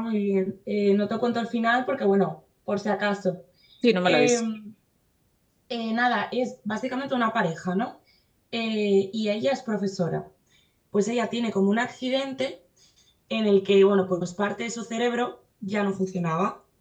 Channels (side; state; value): both; identical; correlation 1.00